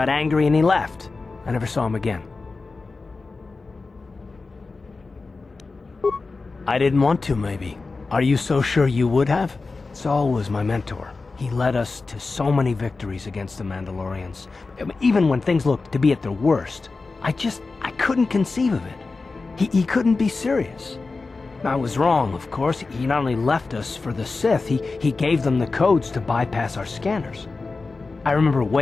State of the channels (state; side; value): quieter; right; 3.9 dB